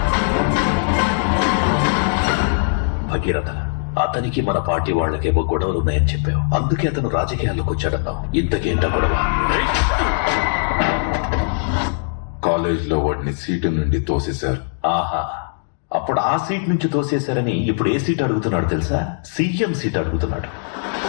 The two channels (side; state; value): right; silent; digital silence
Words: భగీరథ, అతనికి మన పార్టీ వాళ్ళకేవో గొడవలు ఉన్నాయని చెప్పావు. అందుకే అతను రాజకీయాల్లోకి వచ్చాడన్నావు. ఇంతకేంట గొడవ? కాలేజ్ లో వాడిని సీటు నుండి తోసేశారు. ఆహా, అప్పుడు ఆ సీట్ నుంచి తోసేశారని ఇప్పుడు ఏ సీట్ అడుగుతున్నాడు తెలుసా? సీఎం సీట్ అడుగుతున్నాడు.